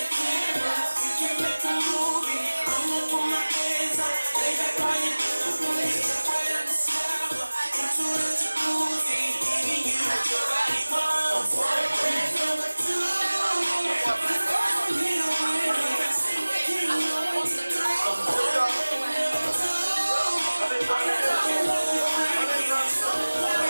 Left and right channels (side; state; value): both; inverted; correlation -1.00